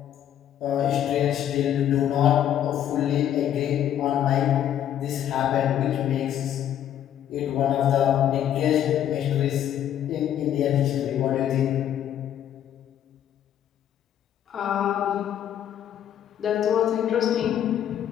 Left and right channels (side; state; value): right; quieter; 10.5 dB